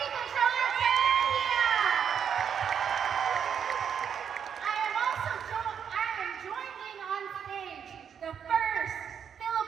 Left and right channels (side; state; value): left; quieter; 7.8 dB